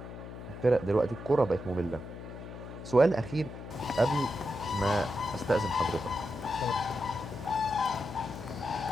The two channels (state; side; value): noise; left; hum, 11 dB below the sound